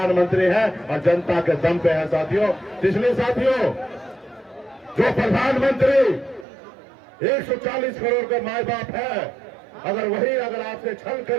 हैं और जनता के दम पे है साथियों। इसलिए साथियों, जो प्रधानमंत्री 140 करोड़ का माए बाप है, अगर आपसे छल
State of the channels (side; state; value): left; drops out; at 6.5 s